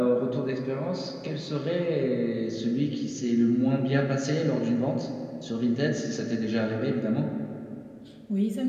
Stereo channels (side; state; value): both; identical; correlation 1.00